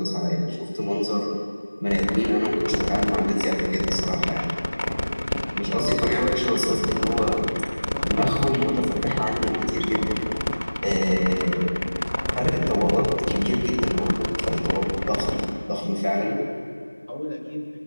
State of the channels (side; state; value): both; inverted; correlation -1.00